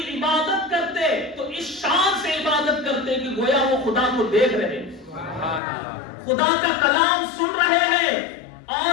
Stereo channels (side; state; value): right; drops out; at 5.6 s